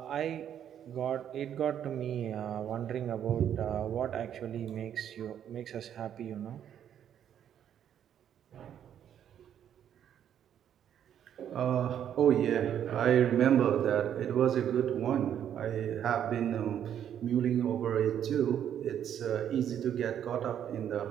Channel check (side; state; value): left; quieter; 9.7 dB